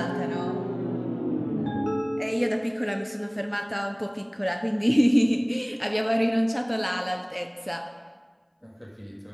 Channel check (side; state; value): both; identical; correlation 1.00